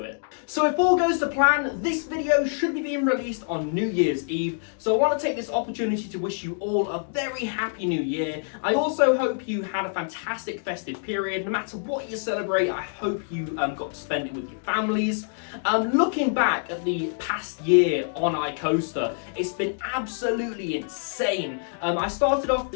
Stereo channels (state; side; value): silent; right; digital silence